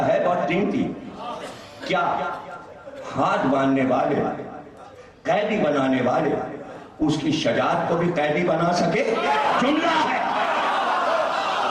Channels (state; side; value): identical; both; correlation 1.00